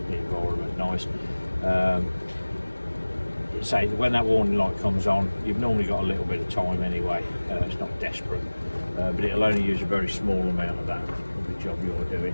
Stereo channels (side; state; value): both; inverted; correlation -1.00